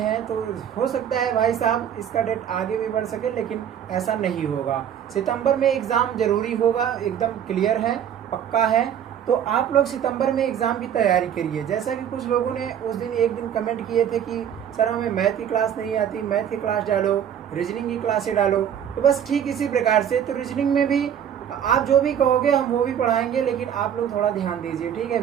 तो हो सकता है भाई साहब इसका डेट आगे भी बढ़ सके, लेकिन ऐसा नहीं होगा। सितंबर में एग्ज़ाम जरूरी होगा, एकदम क्लियर है, पक्का है। तो आप लोग सितंबर में एग्ज़ाम की तैयारी करिए। जैसा कि कुछ लोगों ने उस दिन एक दिन कमेंट किए थे कि सर हमें मैथ की क्लास नहीं आती, मैथ की क्लास डालो, रीजनिंग की क्लासें डालो। तो बस ठीक इसी प्रकार से तो रीजनिंग में भी आप जो भी कहोगे हम वो भी पढ़ाएंगे, लेकिन आप लोग थोड़ा ध्यान दीजिए। ठीक है,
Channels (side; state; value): left; quieter; 9.2 dB